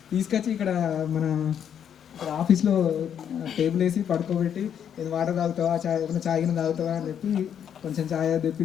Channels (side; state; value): right; quieter; 8.8 dB